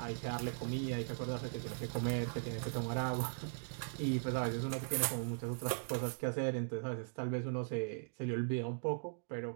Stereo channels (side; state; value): left; silent; digital silence